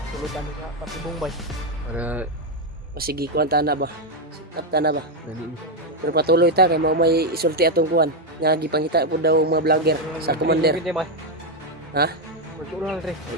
sulutan ka patibong bay. Para Pasigi kuan tana ba? Sikap tana ba? ganin. Pero patuloy ta kay mao may isulti atong kuan. Nga gipangita po daw mga vlogger sa commander. Ha? Magtural re.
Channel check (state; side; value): normal; both; correlation 0.03